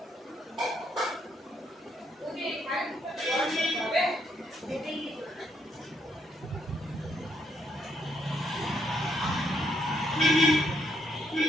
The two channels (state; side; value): normal; both; correlation 0.75